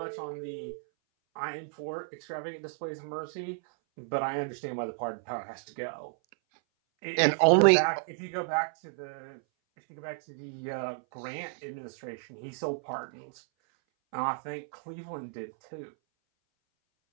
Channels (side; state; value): left; silent; 57 dB below the other